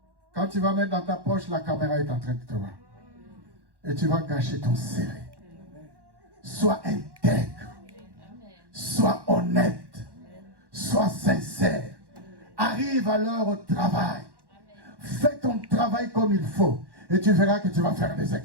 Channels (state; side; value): late; left; 1.1 ms